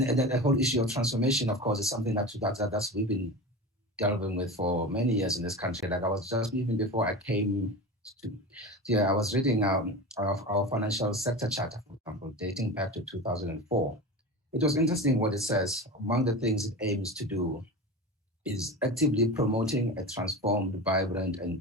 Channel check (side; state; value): both; normal; correlation 0.29